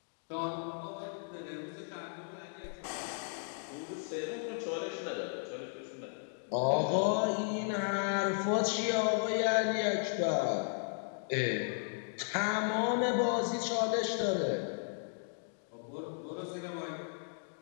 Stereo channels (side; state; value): right; silent; digital silence